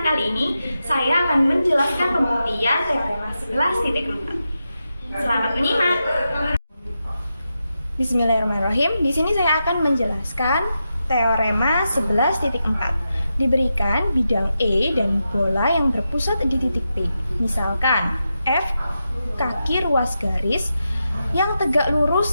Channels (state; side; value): inverted; both; correlation -0.88